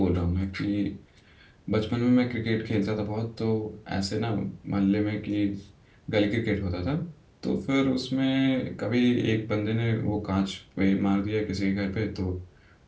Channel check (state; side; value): identical; both; correlation 1.00